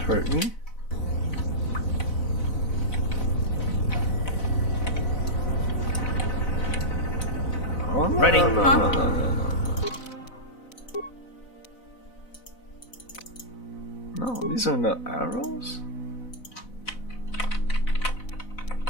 hurt me? Oh, no, Ready? No, these are not arrows?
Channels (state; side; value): late; right; 4.0 ms